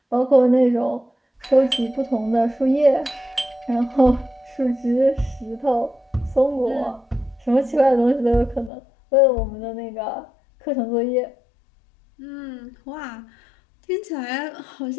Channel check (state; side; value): drops out; right; at 8.7 s